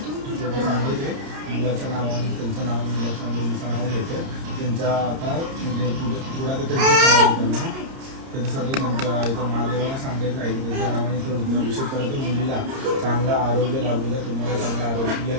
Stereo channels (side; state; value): left; late; 30 ms